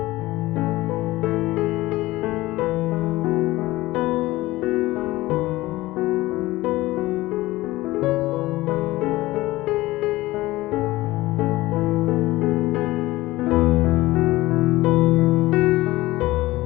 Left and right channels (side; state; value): right; quieter; 18.4 dB